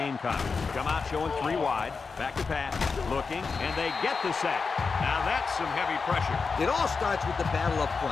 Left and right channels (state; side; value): quieter; right; 4.9 dB